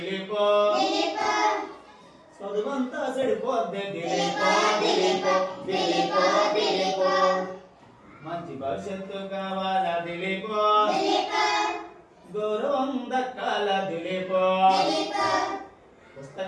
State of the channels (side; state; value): both; identical; correlation 1.00